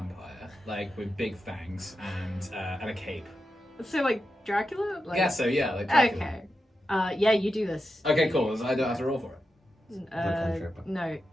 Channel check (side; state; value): both; normal; correlation 0.89